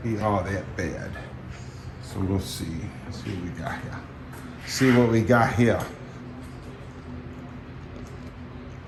be all that bad. So we'll see. Let's see what we got here. See what we got here.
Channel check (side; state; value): both; identical; correlation 1.00